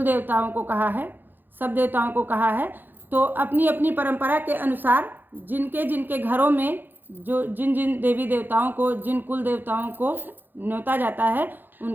देवताओं को कहा है, सब देवताओं को कहा है, तो अपनी अपनी परंपरा के अनुसार जिनके जिनके घरों में जो जिन जिन देवी देवताओं को, जिन कुल देवताओं को न्योता जाता है,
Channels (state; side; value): late; left; 0.091 ms